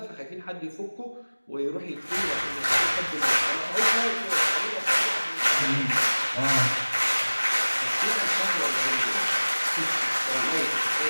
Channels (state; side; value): inverted; both; correlation -1.00